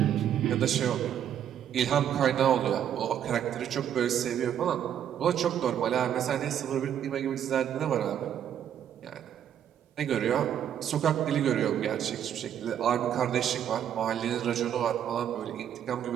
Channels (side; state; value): left; quieter; 9.7 dB